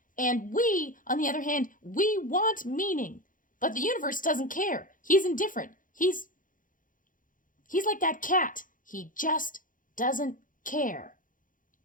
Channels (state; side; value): late; right; 0.39 ms